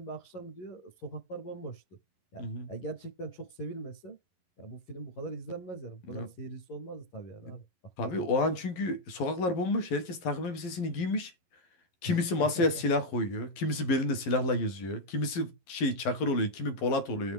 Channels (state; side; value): late; right; 11 ms